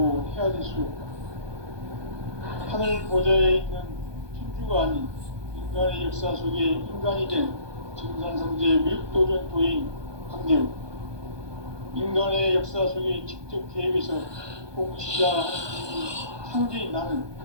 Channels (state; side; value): late; left; 1.2 ms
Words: 헤아릴 수 없다. 하늘 보좌에 있는 천주가 아닌 인간의 역사 속에 인간이 된 증산상제 미륵도전 도인 강대우. 인간의 역사 속에 직접 계획해서 통치자 하나님이 상제인 나는